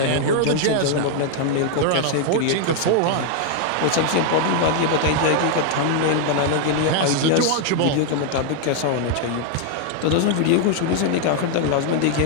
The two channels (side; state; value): both; different; correlation 0.00